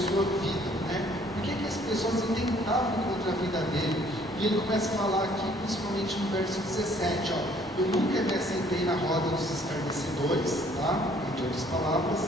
vida, né? Por que as pessoas intentavam contra a vida dele? E ele começa a falar aqui, principalmente no verso 17, ó, eu nunca me assentei na roda dos escarnecedores, tá? Entre outras palavras,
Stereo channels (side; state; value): both; normal; correlation 0.60